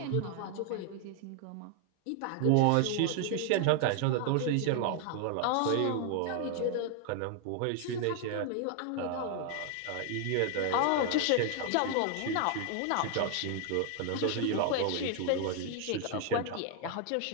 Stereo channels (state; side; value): different; both; correlation 0.00